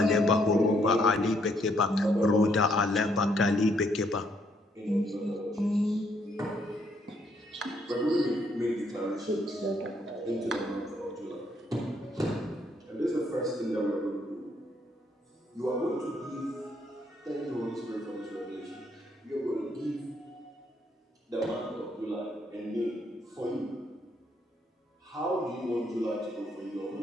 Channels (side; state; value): both; normal; correlation 0.71